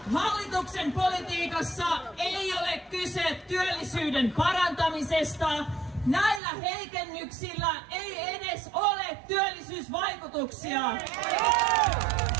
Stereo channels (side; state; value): left; drops out; at 6.4 s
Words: hallituksen politiikassa ei ole kyse työllisyyden parantamisesta. Näillä heikennyksillä ei edes ole työllisyysvaikutuksia.